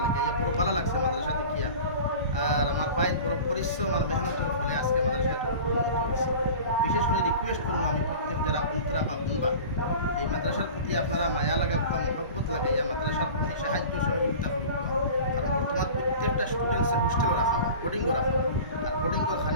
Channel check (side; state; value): both; inverted; correlation -0.38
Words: লাগে আইয়া বড় ভালো লাগছে মাদ্রাসা দেখিয়া। আর আমার ভাইয়ের বড় পরিশ্রম আর মেহনতের ফলে আজকে মাদ্রাসা এতটুকু উন্নত হয়েছে। বিশেষ করে রিকোয়েস্ট করবো আমি প্রত্যেক যারা বন্ধুরা বা বন্ধুবা এই মাদ্রাসার প্রতি আপনারা মায়া লাগাবা, মহব্বত লাগাইয়া মাদ্রাসার প্রতি সাহায্য সহযোগিতা করুক। কারণ বর্তমান প্রত্যেকটা স্টুডেন্টসের হোস্টেলও রাখা হয়, বোর্ডিংও রাখা হয়, আর বোর্ডিংয়ের